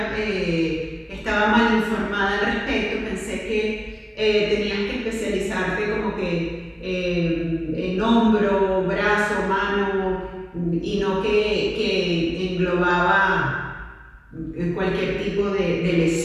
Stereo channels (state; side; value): identical; both; correlation 1.00